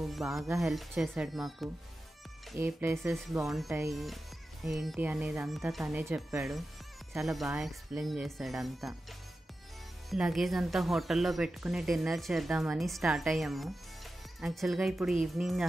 బాగా హెల్ప్ చేశాడు మాకు. ఏ ప్లేసెస్ బాగుంటాయి ఏంటి అనేది అంతా తనే చెప్పాడు. చాలా బాగా ఎక్స్ప్లెయిన్ చేశాడు అంతా. లగేజ్ అంతా హోటల్లో పెట్టుకుని డిన్నర్ చేద్దామని స్టార్ట్ అయ్యాము. యాక్చువల్గా ఇప్పుడు ఈవినింగ్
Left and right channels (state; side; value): normal; both; correlation 0.92